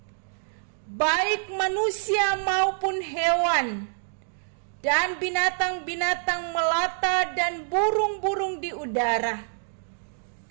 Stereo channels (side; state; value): left; silent; digital silence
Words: baik manusia maupun hewan, dan binatang-binatang melata dan burung-burung di udara.